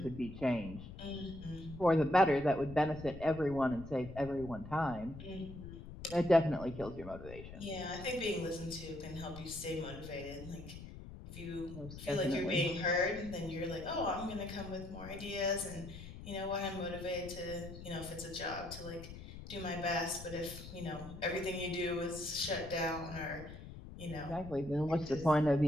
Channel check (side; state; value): left; noise; rumble, 12 dB below the sound